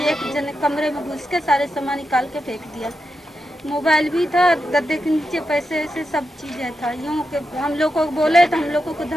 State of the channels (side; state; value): both; normal; correlation 0.87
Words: एक जने कमरे में घुस के सारे सामान निकाल के फेंक दिया। मोबाइल भी था, गद्दे के नीचे पैसे ऐसे सब चीजें था। यूँ के हम लोग को बोले तो हम लोगों को